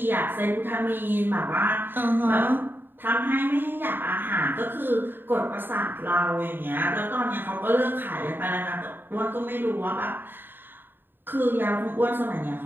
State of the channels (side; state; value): left; late; 0.095 ms